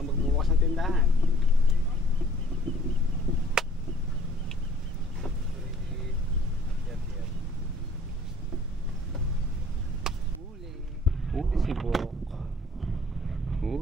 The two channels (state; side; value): normal; both; correlation 0.54